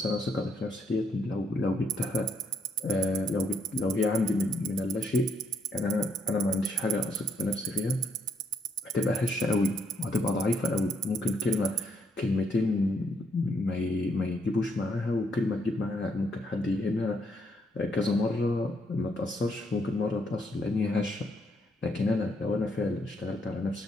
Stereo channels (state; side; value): normal; both; correlation 0.72